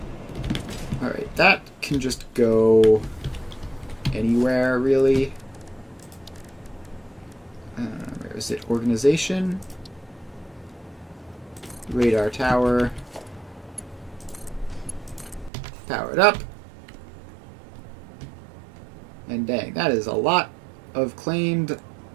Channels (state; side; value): drops out; left; at 15.5 s